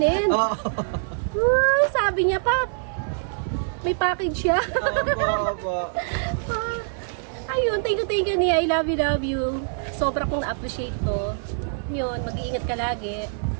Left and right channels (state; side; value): silent; left; digital silence